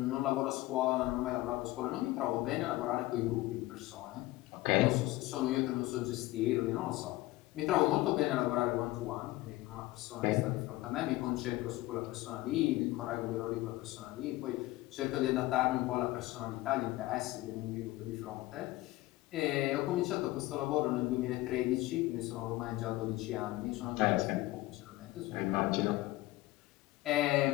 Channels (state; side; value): quieter; right; 18.4 dB